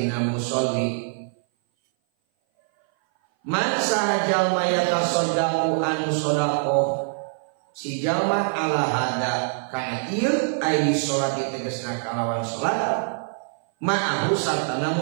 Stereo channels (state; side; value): silent; left; 58 dB below the other